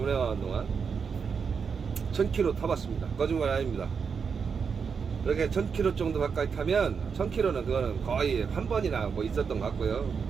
동안 1000km 타봤습니다. 거짓말이 아닙니다. 이렇게 1000km 정도 가까이 타면 1000km는 그거는 거의 한 번이나 뭐 있었던 것 같고요.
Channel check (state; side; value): quieter; left; 6.0 dB